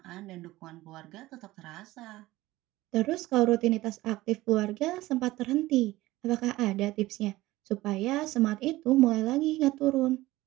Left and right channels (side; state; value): left; quieter; 17.9 dB